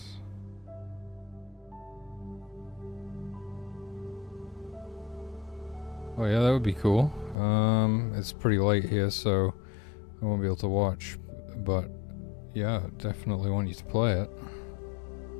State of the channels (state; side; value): drops out; right; at 7.4 s